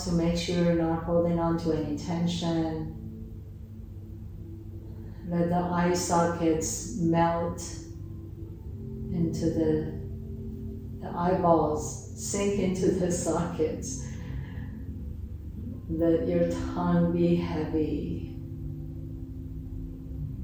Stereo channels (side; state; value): both; identical; correlation 1.00